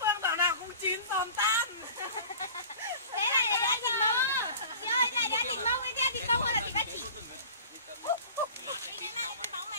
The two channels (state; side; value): inverted; both; correlation -0.41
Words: thảo nào cũng chín tồn tan. Thế này là đã thịt mông. Chị ơi, này đã thịt mông với thịt mông hay là thịt ba chỉ? Đi cái móng